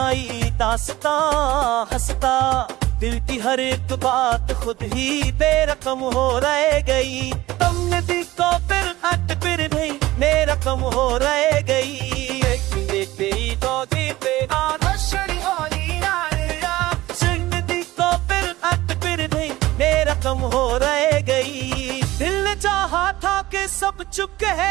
दास्तां हंसता, दिल की हर एक बात खुद ही बेरकम हो रह गई। तुमने दिल को फिर हट फिर नहीं मेरा कम हो रह गई। कम हो रह गई। दिल ने चाहा था कि सब चुप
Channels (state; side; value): quieter; left; 17.4 dB